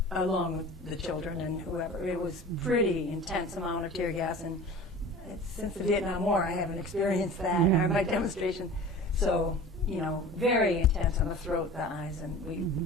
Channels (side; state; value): both; normal; correlation 0.39